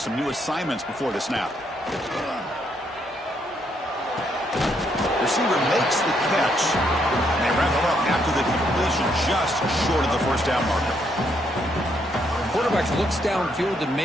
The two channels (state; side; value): normal; both; correlation 0.74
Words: new assignments before the snap. Receiver makes the catch. And they wrap it up after the completion just short of the first down marker. Quarterback looks downfield to